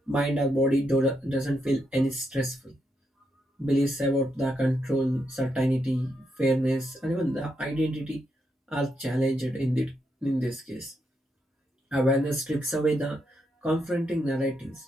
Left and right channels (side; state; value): both; normal; correlation 0.81